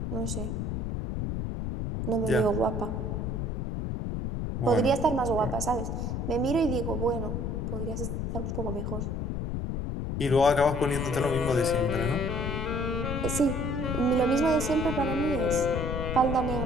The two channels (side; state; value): left; noise; rumble, 2 dB below the sound